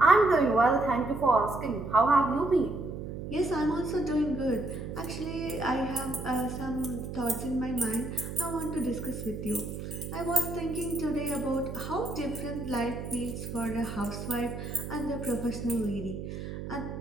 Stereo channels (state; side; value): noise; right; hum, 7 dB below the sound